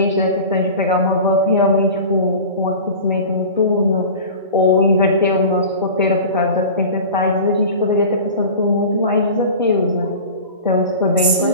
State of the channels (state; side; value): inverted; both; correlation -0.35